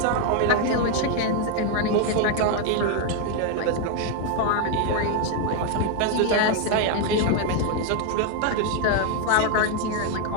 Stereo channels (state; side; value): different; both; correlation 0.01